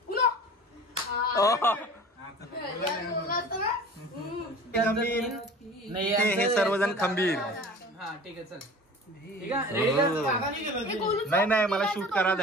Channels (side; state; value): both; normal; correlation 0.41